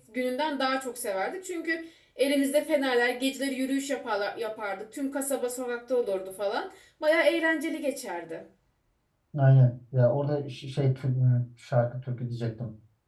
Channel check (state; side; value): identical; both; correlation 1.00